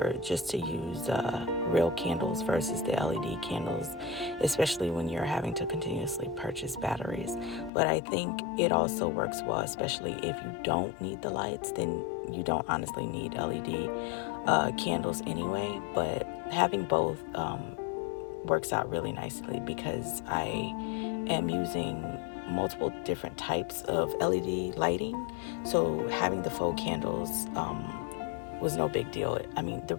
just to use real candles versus the LED candles, especially when you're having to continuously purchase batteries. But I think it also works well, especially if you don't need the lights, then you don't honestly need LED candles anyway. But having both works out really nicely because I am using multiple different types of LED lighting. So having the faux candles was no big deal. I mean, the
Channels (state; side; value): drops out; right; at 7.7 s